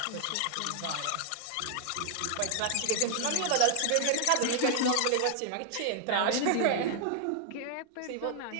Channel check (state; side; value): different; both; correlation 0.00